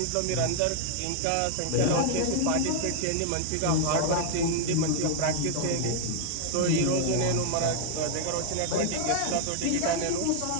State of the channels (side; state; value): both; different; correlation 0.00